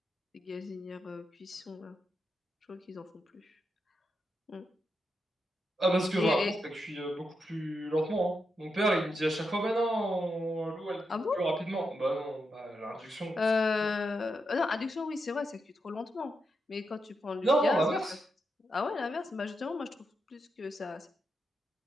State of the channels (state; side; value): normal; both; correlation 0.85